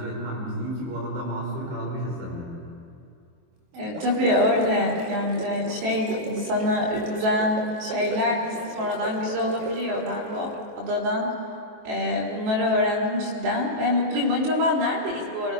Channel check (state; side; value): late; left; 23 ms